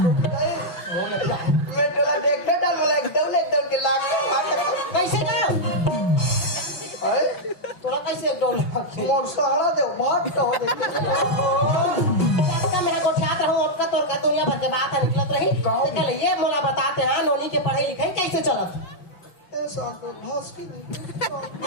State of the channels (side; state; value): right; late; 6.0 ms